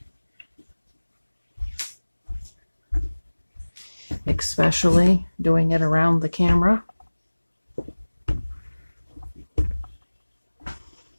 Especially doing it around the camera.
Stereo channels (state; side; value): inverted; both; correlation -1.00